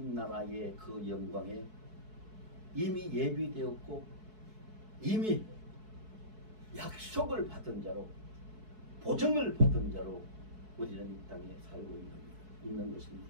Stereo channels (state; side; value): late; left; 4.6 ms